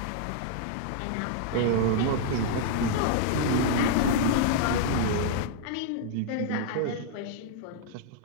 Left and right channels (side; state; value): both; different; correlation -0.01